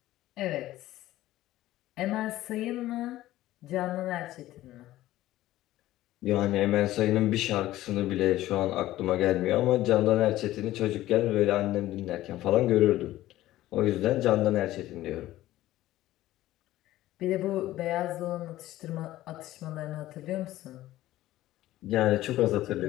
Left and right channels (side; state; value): right; quieter; 15.3 dB